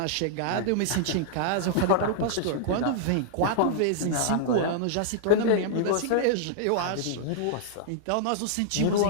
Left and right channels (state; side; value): different; both; correlation -0.02